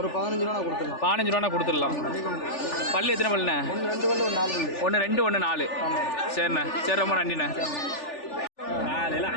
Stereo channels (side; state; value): right; late; 3.4 ms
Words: ஒரு 15 ரூபா கொடுத்துடலாம். 15 ரூபா கொடுத்துடலாம். பல்லு எத்தனை பல்லுண்ணே? 2 பல்லு 4 பல்லு. 1 2 1 4. சரிண்ணே, சரி, ரொம்ப நன்றிண்ணே.